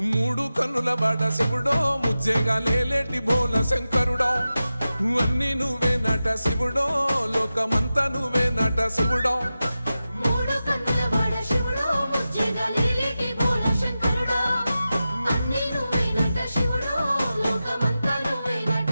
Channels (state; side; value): inverted; both; correlation -0.93